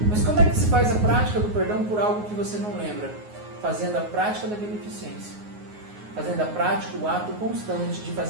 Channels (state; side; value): late; left; 9.5 ms